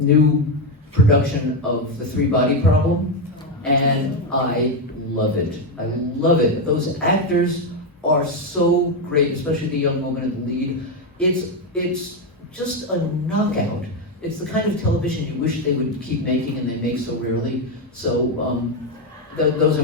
production of The Three-Body Problem, and I love it. I love it. Those actors are so great, especially the young woman in the lead. It's just a knockout. It's the kind of television you wish they would keep making, and they make so rarely. So those are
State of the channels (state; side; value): normal; both; correlation 0.07